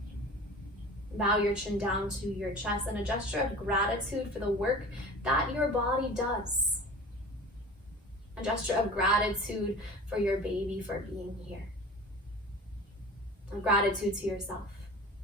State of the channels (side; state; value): both; normal; correlation 0.38